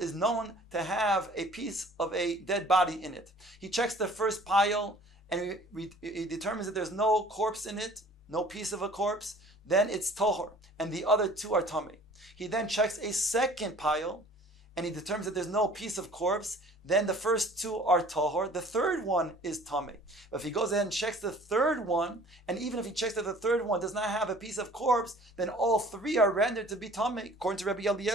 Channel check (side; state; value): both; normal; correlation 0.50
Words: known to have a piece of a dead body in it. He checks the first pile and he determines that there's no corpse in it, no piece of a corpse, then it's tohor, and the other two are tamei. He then checks a second pile, and he determines that there's no piece of corpse, then the first two are tohor, the third one is tamei. But if he goes ahead and checks the third one, and even if he checks that the third one does not have a piece of corpse, then all three are rendered to be tamei, according to Rabbi